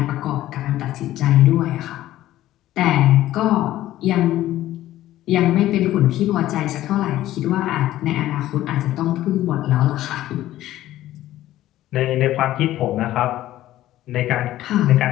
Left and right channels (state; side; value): quieter; right; 14.3 dB